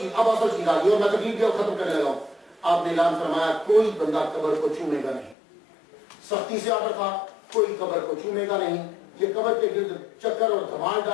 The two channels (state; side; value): drops out; right; at 5.4 s